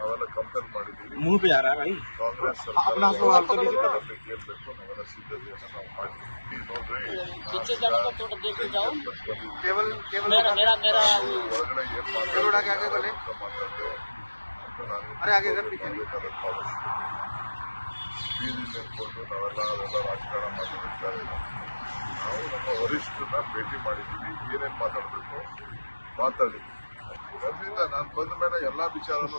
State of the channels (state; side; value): inverted; both; correlation -1.00